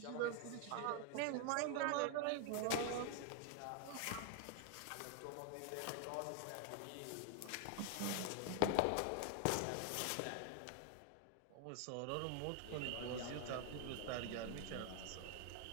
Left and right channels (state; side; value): different; both; correlation 0.00